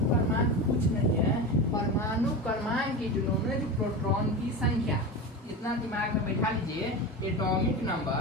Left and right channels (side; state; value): both; normal; correlation 0.24